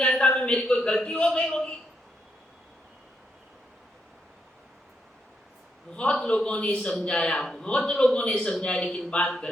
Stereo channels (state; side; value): normal; both; correlation 0.80